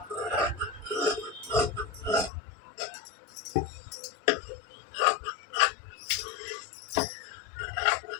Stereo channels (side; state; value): right; drops out; at 2.3 s